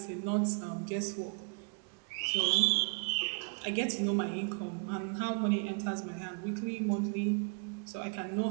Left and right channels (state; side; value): quieter; left; 38.6 dB